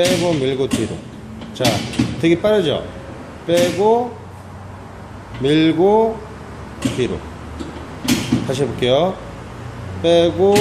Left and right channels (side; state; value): both; identical; correlation 1.00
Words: 밀고 뒤로. 자, 되게 빠르죠? 빼고 밀고 뒤로. 다시 해볼게요. 빼고